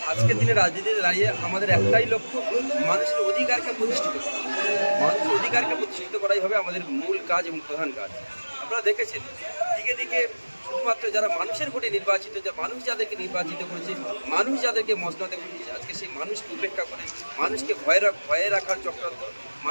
আজকের দিনে রাজনীতিতে দাঁড়িয়ে আমাদের একটাই লক্ষ্য, মানুষের অধিকারকে প্রতিষ্ঠিত করা। মানুষের অধিকারকে প্রতিষ্ঠিত করাই হবে আমাদের মূল কাজ এবং প্রধান কাজ। আপনারা দেখেছেন দিকে দিকে শুধুমাত্র যারা মানুষের ভোটে নির্বাচিত, যে মানুষ যাদেরকে নির্বাচিত করেছে, মানুষ যাদেরকে মসনদে বসিয়েছে, আজকে সেই মানুষকে উপেক্ষা করে মানুষকে ভয়ে রাখার চক্রান্ত,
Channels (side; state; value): both; inverted; correlation -1.00